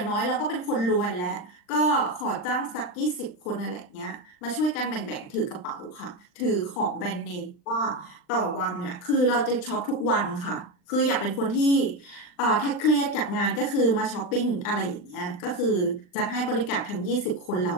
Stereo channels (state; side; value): late; right; 39 ms